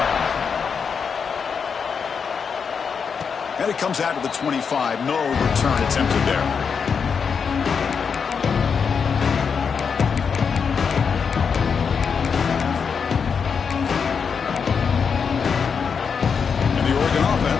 And it comes out to the 25. No return attempted there. And the Oregon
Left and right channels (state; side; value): quieter; right; 6.2 dB